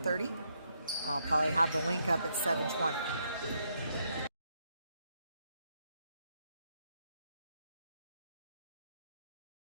I'll probably have the link up at 7:20.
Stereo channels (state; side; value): inverted; both; correlation -0.76